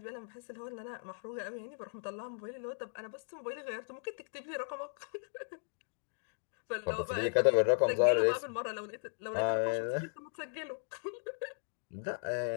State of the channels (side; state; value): right; silent; digital silence